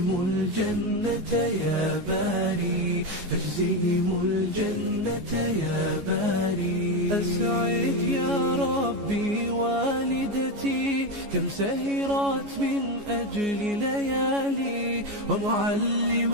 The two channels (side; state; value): left; late; 14 ms